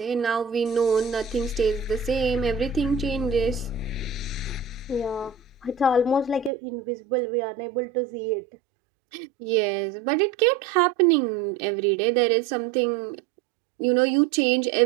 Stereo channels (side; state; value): left; drops out; at 6.5 s